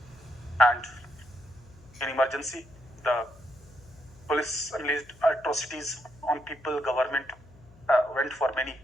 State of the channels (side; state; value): left; noise; hum, 24 dB below the sound